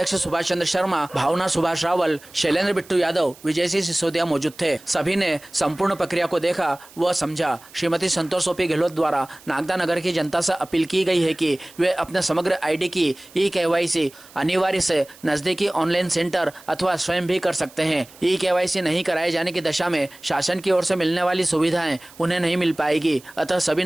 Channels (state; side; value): noise; right; hiss, 23 dB below the sound